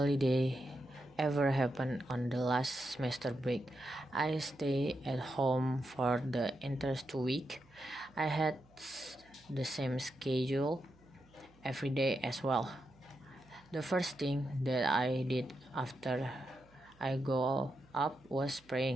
ever happened on the last semester break. I stayed at home for the entire 2 weeks. I had the same schedule every day as well. The first thing that I did after I go up was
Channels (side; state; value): right; noise; hum, 29 dB below the sound